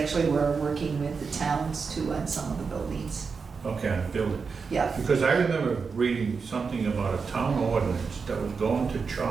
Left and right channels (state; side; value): quieter; left; 5.2 dB